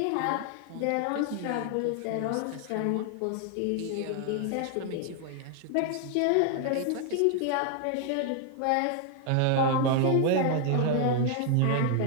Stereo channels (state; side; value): different; both; correlation 0.00